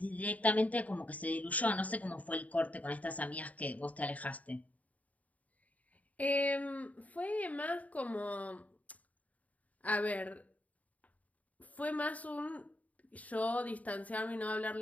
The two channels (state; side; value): late; right; 0.071 ms